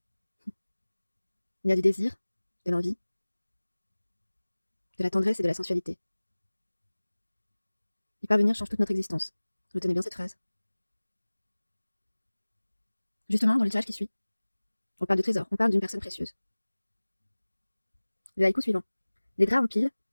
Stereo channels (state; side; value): inverted; both; correlation -1.00